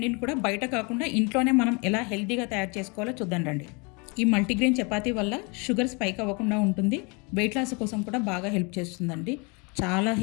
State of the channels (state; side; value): quieter; right; 30.8 dB